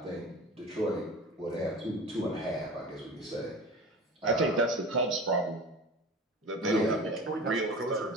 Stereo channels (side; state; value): both; normal; correlation 0.35